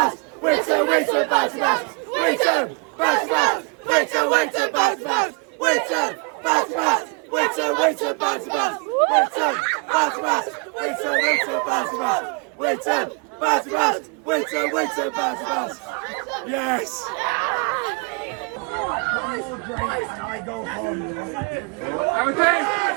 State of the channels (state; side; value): quieter; left; 35.2 dB